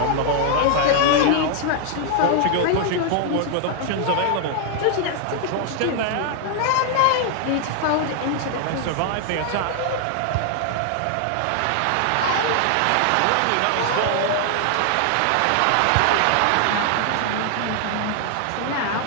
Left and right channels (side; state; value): both; different; correlation 0.00